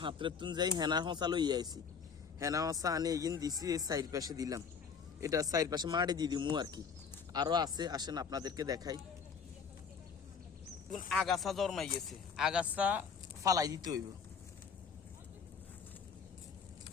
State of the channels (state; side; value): quieter; right; 6.1 dB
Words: হাতের তুন যাই হেনা হসা লই আইছি। হেনা হসা আনে এগিন দিছি, এই সাইড পাশে দিলাম। এটা সাইড পাশে মাটি দিয়ে দিমু আর কি। আরো আছে, আসেন আপনাদেরকে দেখাই। আগাছা জন্মাই গেছে, আগাছা ফালাই দিতে হইব।